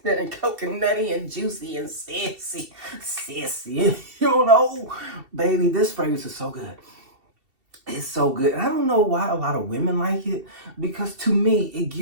coconutty and juicy and sissy, baby. This fragrance is so good. It's so good. And I don't know why a lot of women like it, because to me, it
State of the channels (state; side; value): late; left; 2.7 ms